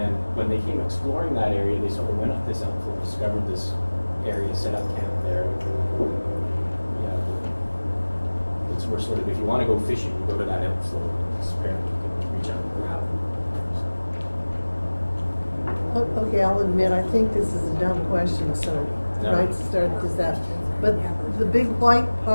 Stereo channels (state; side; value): inverted; both; correlation -1.00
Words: when they came exploring that area, they sort of went up this outflow, discovered this area, set up camp there. Yeah, it's where sort of, if you want to go fishing, you go to that outflow. Apparently you can reach out and grab it. Okay, I'll admit, I think this is a dumb question, so No. right to start this out. But the big white